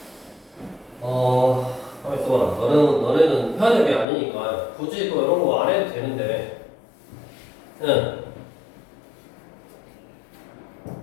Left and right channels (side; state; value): right; drops out; at 4.0 s